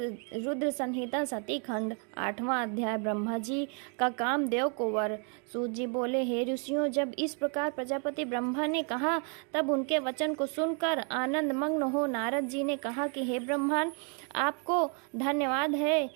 संहिता सती खंड 8वां अध्याय ब्रह्मा जी का कामदेव को वर। सूत जी बोले, हे ऋषियों, जब इस प्रकार प्रजापति ब्रह्मा ने कहा तब उनके वचन को सुनकर आनंद मग्न हो नारद जी ने कहा कि हे ब्रह्मन, आपको धन्यवाद है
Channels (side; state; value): left; quieter; 38.5 dB